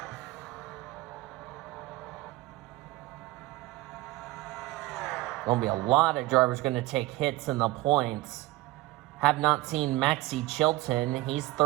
Going to be a lot of drivers going to take hits in the points. Have not seen Maxie Chilton. He's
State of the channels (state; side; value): quieter; left; 18.8 dB